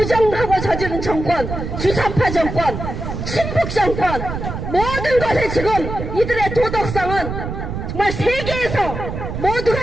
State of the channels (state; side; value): noise; right; rumble, 6 dB below the sound